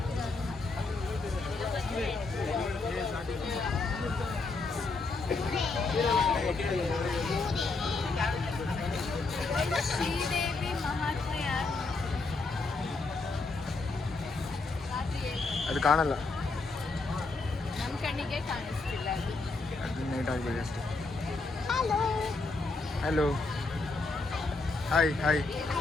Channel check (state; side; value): quieter; right; 3.7 dB